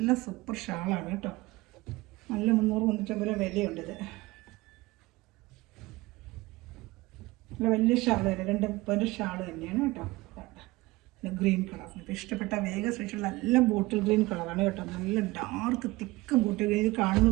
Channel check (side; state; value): left; quieter; 20.6 dB